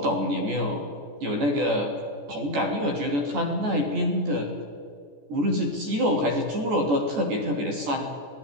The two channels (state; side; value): late; left; 14 ms